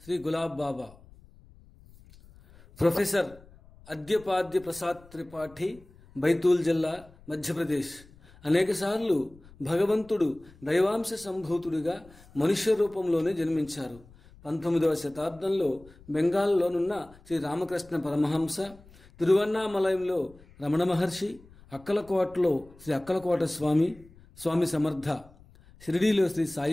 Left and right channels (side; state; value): left; noise; rumble, 24 dB below the sound